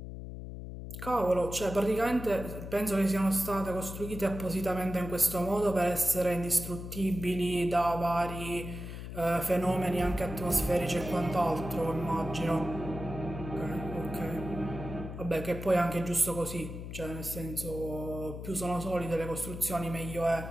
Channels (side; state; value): left; noise; hum, 9 dB below the sound